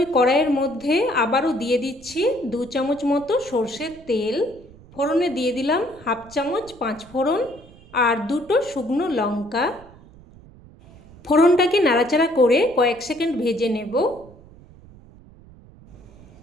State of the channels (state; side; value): noise; right; rumble, 22 dB below the sound